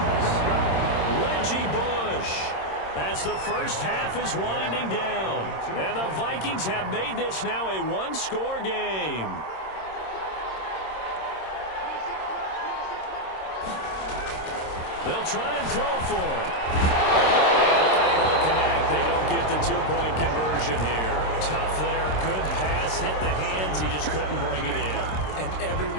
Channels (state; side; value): late; right; 26 ms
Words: Reggie Bush. As the first half is winding down. And the Vikings have made this now a one-score game. They'll try and throw for it. And able to connect. They don't get the two-point conversion here. Tough there. Good pass. Hit the hands. He just couldn't bring it in. And every